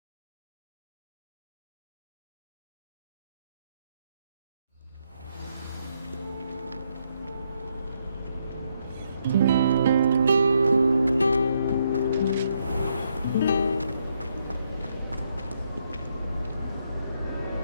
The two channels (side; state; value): both; inverted; correlation -0.77